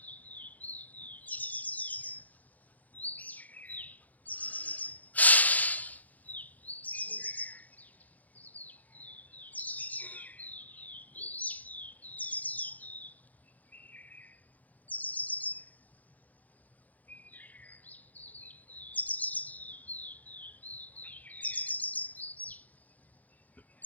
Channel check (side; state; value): right; late; 0.079 ms